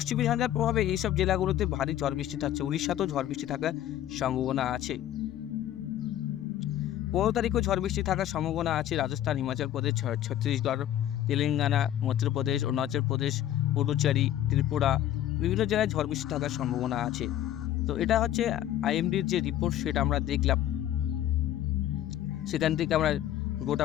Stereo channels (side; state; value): right; quieter; 12.1 dB